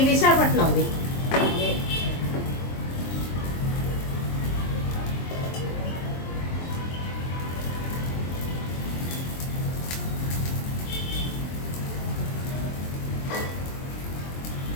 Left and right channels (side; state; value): right; late; 23 ms